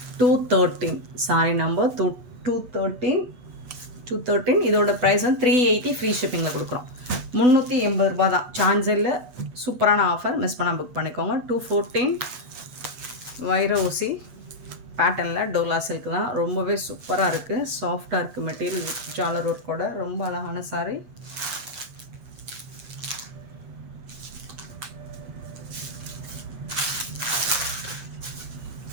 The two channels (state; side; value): late; left; 8.3 ms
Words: $213 சாரி நம்பர். 213. இதோட ப்ரைஸ் வந்து 380 ஃப்ரீ ஷிப்பிங்கில் கொடுக்குறோம். 380 ரூபா தான். சான்ஸே இல்லை, சூப்பரான ஆஃபர். மிஸ் பண்ணால் புக் பண்ணிக்கோங்க. 214 வைர ஊசி பேட்டர்னில் டோலா சில்க் தான். ரொம்பவே சூப்பராக இருக்குது, சாஃப்டாக இருக்குது. மெட்டீரியல் ஜாலர் ஒர்க்கோட ரொம்ப அழகான சாரி.